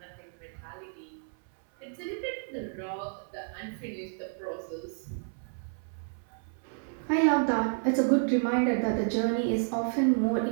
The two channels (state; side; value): silent; left; 57 dB below the other